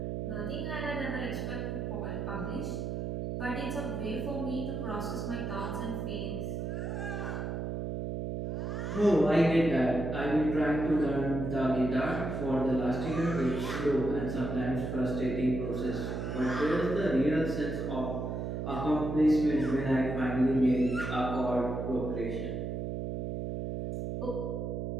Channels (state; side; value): noise; right; hum, 3 dB below the sound